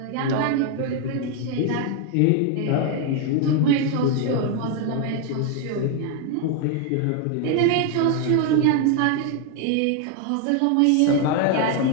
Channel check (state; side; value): different; both; correlation 0.01